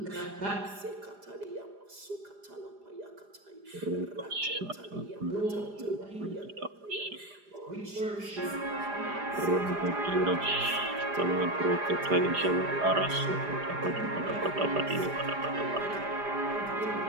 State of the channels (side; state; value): left; late; 4.9 ms